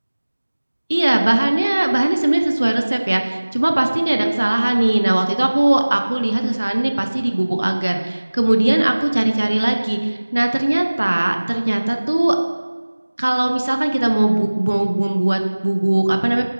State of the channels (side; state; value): both; inverted; correlation -1.00